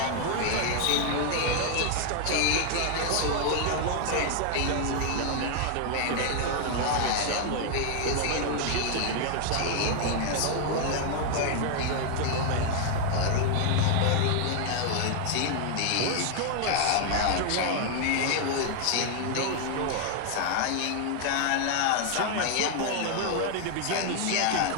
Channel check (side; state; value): both; different; correlation 0.00